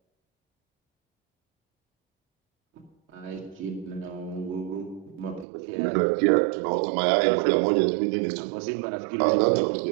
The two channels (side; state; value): left; drops out; at 5.5 s